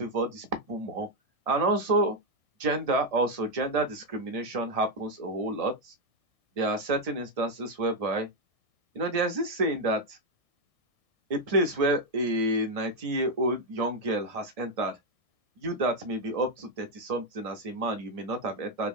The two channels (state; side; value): late; left; 1.6 ms